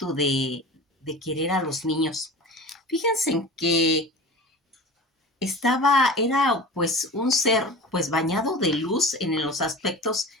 de querer a los niños. Fíjense en que era pues un ser pues bañado de luz en los aspectos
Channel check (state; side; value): normal; both; correlation 0.35